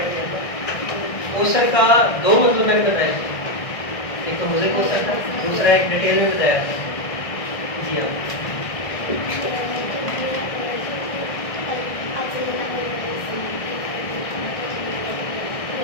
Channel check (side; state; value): right; late; 1.6 ms